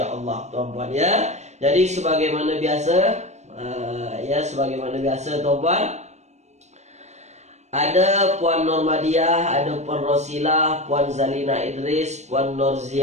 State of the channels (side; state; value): left; late; 0.33 ms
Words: tuan-puan ya. Jadi sebagaimana biasa, tuan-puan, ada Puan Normadiah, ada Puan Rosilah, Puan Zalina Idris, Puan